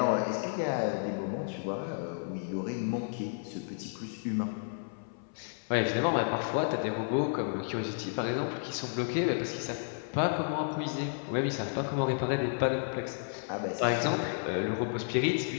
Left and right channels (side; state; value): right; silent; 56 dB below the other